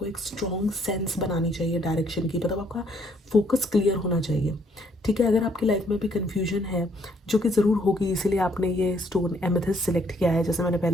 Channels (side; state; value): both; normal; correlation 0.67